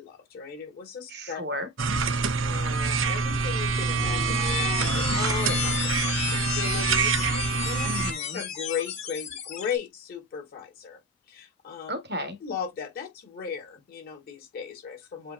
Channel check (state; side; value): normal; both; correlation 0.30